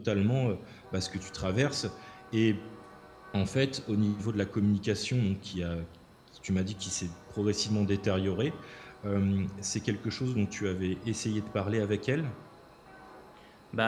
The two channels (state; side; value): identical; both; correlation 1.00